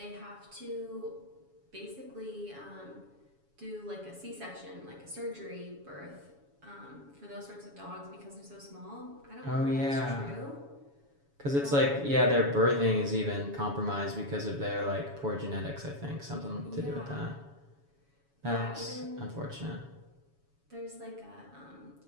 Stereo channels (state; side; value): late; left; 7.1 ms